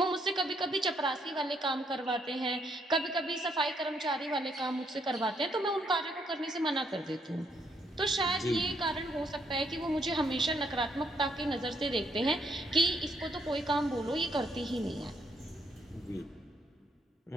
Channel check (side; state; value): both; normal; correlation 0.72